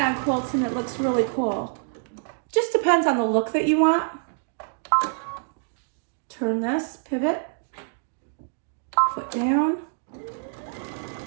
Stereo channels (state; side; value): silent; left; digital silence